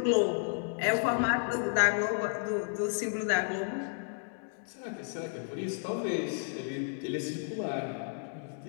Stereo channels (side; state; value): right; silent; digital silence